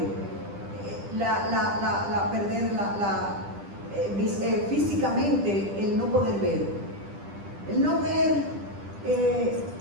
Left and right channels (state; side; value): late; left; 10 ms